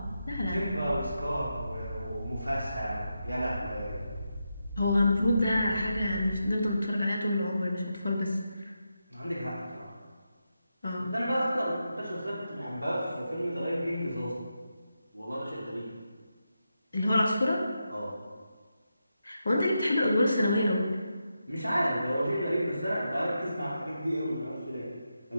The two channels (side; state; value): both; inverted; correlation -0.87